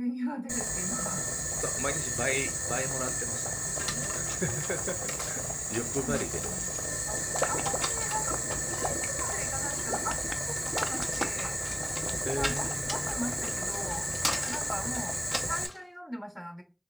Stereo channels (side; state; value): both; identical; correlation 1.00